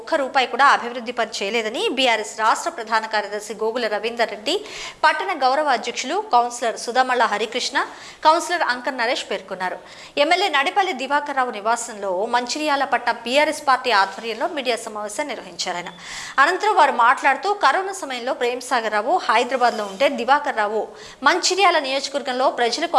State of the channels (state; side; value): identical; both; correlation 1.00